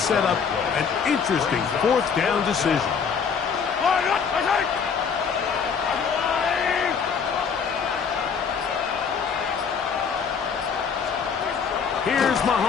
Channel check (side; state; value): right; quieter; 6.3 dB